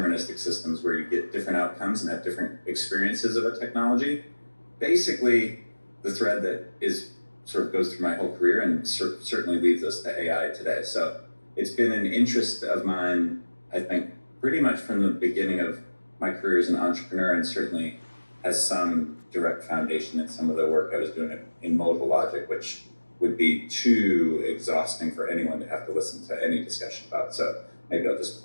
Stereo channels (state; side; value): inverted; both; correlation -1.00